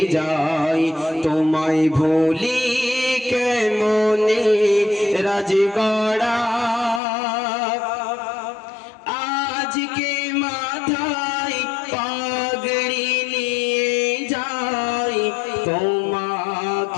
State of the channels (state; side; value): drops out; right; at 7.0 s